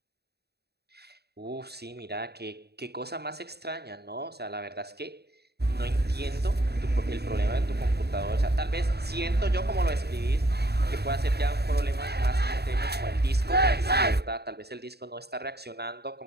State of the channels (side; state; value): left; late; 0.47 ms